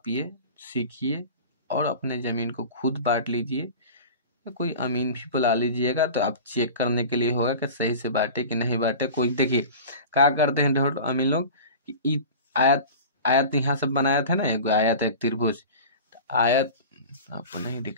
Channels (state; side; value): inverted; both; correlation -0.35